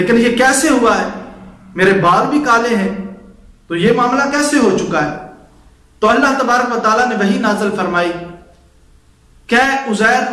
ये कैसे हुआ है, मेरे बाल भी काले हैं, तो ये मामला कैसे हो चुका है। तो अल्लाह तबारक व तआला ने वही नाज़िल फरमाई, क्या उज़ैर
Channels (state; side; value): identical; both; correlation 1.00